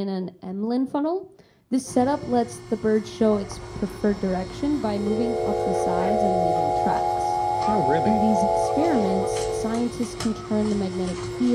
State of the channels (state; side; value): identical; both; correlation 1.00